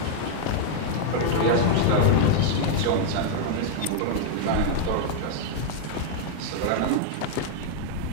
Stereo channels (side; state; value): both; different; correlation -0.01